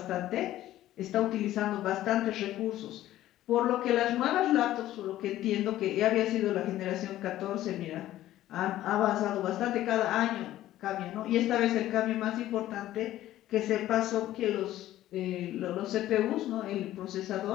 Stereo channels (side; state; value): right; quieter; 14.0 dB